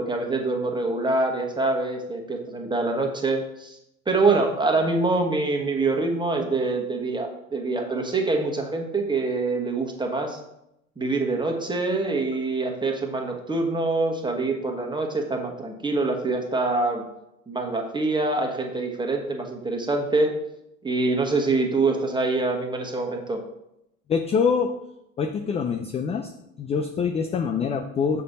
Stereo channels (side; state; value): both; normal; correlation 0.53